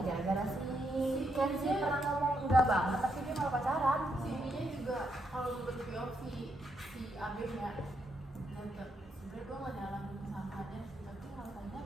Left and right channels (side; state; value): both; normal; correlation 0.78